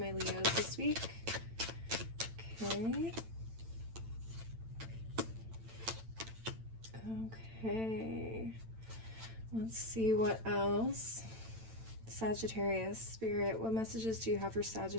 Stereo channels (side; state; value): left; late; 8.9 ms